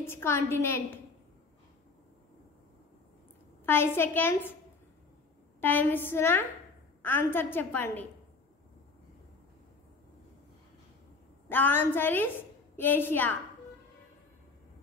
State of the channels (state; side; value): quieter; right; 4.0 dB